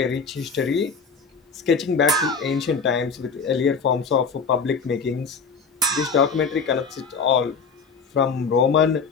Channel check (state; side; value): quieter; right; 5.2 dB